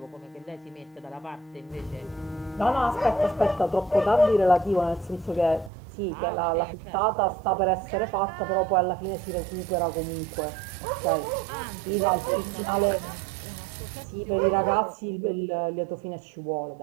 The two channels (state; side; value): drops out; left; at 5.7 s